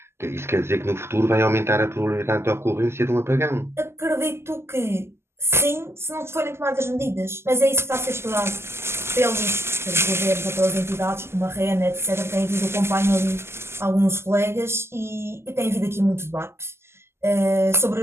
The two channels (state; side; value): late; left; 0.12 ms